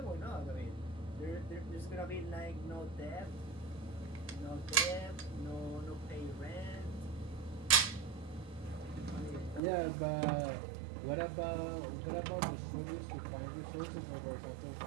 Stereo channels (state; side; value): drops out; left; at 9.6 s